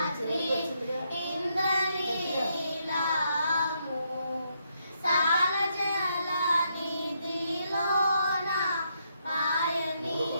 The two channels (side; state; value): both; inverted; correlation -0.78